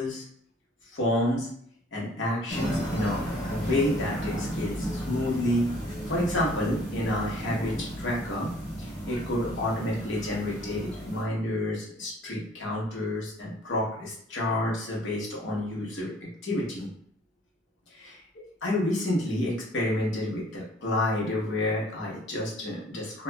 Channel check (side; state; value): both; normal; correlation 0.55